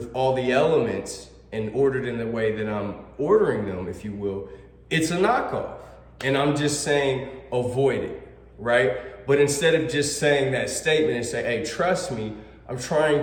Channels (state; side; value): identical; both; correlation 1.00